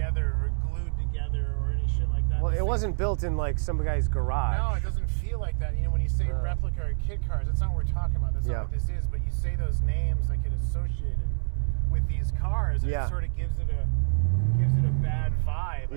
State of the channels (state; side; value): silent; left; digital silence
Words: or glued together or any shit like that. Well, this it thing wasn't built in like some guy's garage. No, it doesn't feel like that. When you say replica or kit cars, that's not what we're talking about. That's not what this is. But you say those names that get associated with these cars, and it sort of gives it a bad vibe,